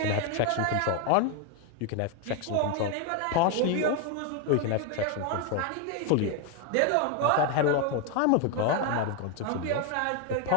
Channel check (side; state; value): both; different; correlation 0.01